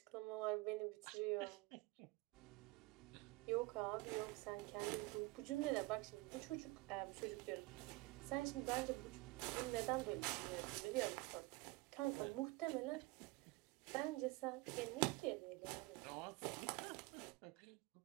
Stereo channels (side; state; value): left; quieter; 22.8 dB